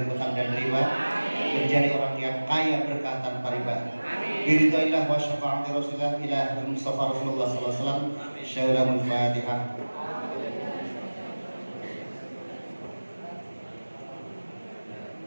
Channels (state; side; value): inverted; both; correlation -1.00